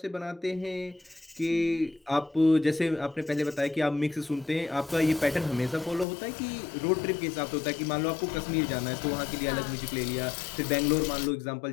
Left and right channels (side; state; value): right; drops out; at 6.1 s